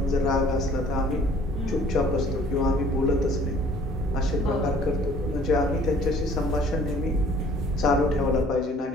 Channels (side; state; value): both; normal; correlation 0.55